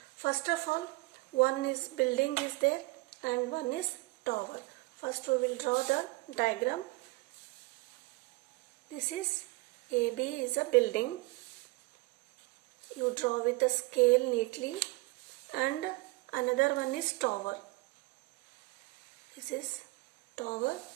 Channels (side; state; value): left; quieter; 23.3 dB